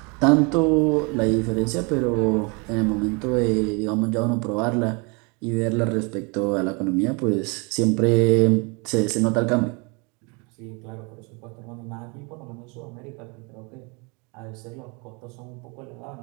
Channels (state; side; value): quieter; left; 31.2 dB